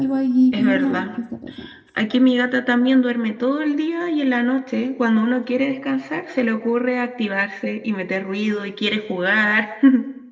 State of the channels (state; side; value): identical; both; correlation 1.00